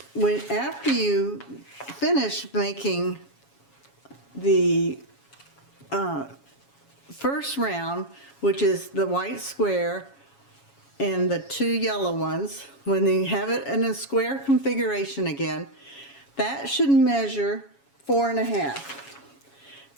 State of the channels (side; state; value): right; late; 7.2 ms